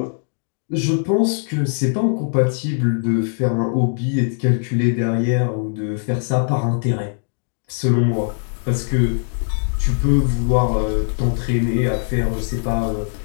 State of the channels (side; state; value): right; silent; 65 dB below the other